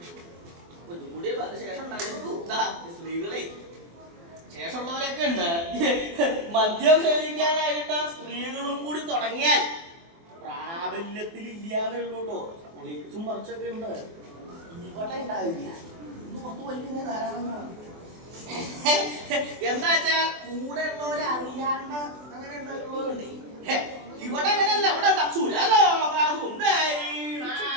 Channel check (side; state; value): left; late; 24 ms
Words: ഒന്നുകൂടി ശേഷം സ്ത്രീകളെ ശേഷമുള്ളവരൊക്കെ ഉണ്ട്. മദ്യം സേവിക്കാനായിട്ട് സ്ത്രീകളും കൂടി തുടങ്ങിയാൽ പ്രാബല്യത്തിൽ ഇല്ലാന്നേ ഉള്ളൂ കേട്ടോ. ഒളിച്ചും മറിച്ചൊക്കെ ഉണ്ട്. ഇവിടെ ഉണ്ടാവില്ല. ഇന്ന് പുറത്ത് വലിയ ധാരാളങ്ങളാണ്. എന്താ വെച്ചാൽ കൂടെ ഉള്ളവരറിയാണ്ട് അങ്ങനെ ഉണ്ടായിട്ടുള്ളവരുണ്ട്. ഇവിടെ അങ്ങനെയല്ല. ഇവിടെ